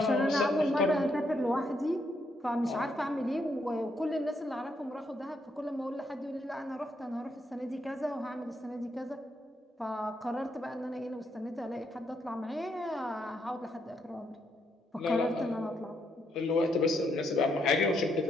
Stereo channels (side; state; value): both; normal; correlation 0.76